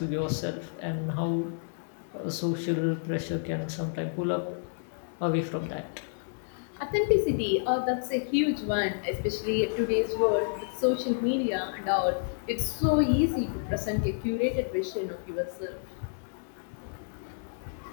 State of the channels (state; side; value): silent; right; digital silence